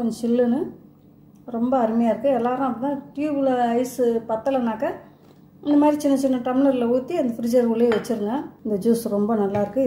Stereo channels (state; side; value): identical; both; correlation 1.00